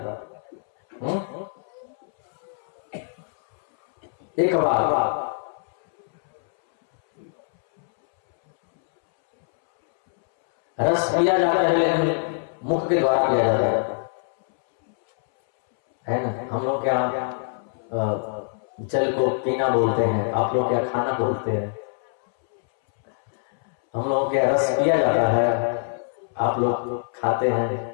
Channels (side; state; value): right; silent; 63 dB below the other